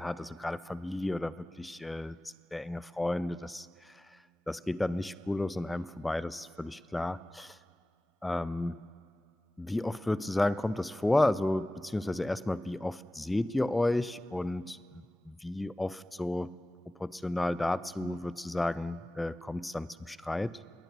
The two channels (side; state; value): both; normal; correlation 0.98